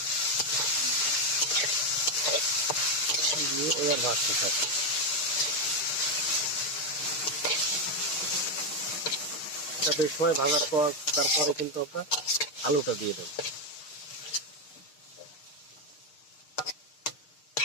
দিয়ে এবার ভাজতে থাকবে। এটা বেশ সময় ভাজার পর তারপরে কিন্তু আমরা আলুটা দিয়ে দেবো।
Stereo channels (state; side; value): late; right; 6.4 ms